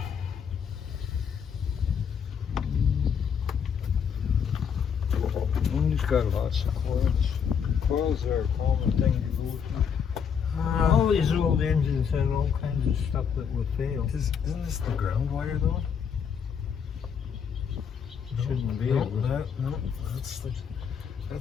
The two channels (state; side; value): quieter; right; 7.1 dB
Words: He's got lots of coils. Coils are a common thing to go through. All these old engines had all kinds of stuff that would fail. Isn't this the ground wire though? Shouldn't be. No, It was-